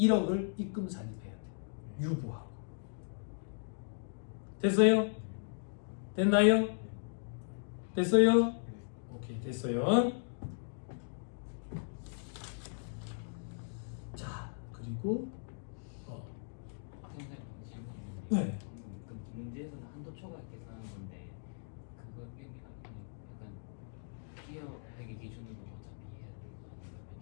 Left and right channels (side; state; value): right; silent; digital silence